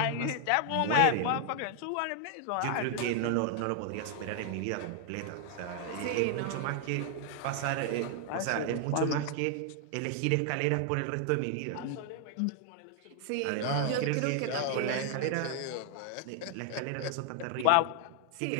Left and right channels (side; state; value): both; different; correlation 0.00